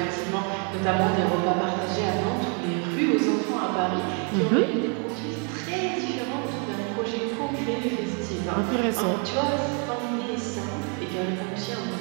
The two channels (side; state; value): left; quieter; 38.5 dB